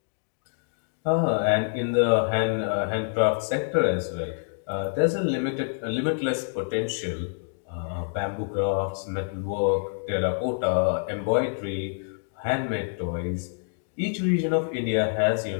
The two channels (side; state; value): right; silent; digital silence